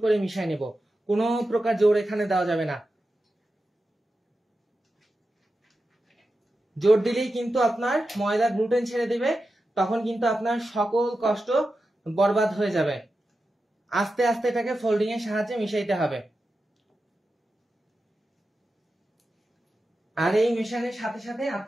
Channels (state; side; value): normal; both; correlation 0.91